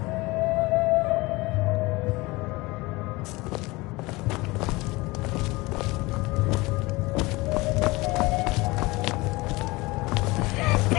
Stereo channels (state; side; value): quieter; right; 22.5 dB